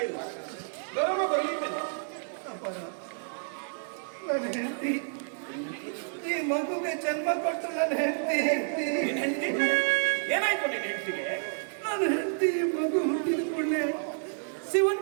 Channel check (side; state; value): left; silent; 58 dB below the other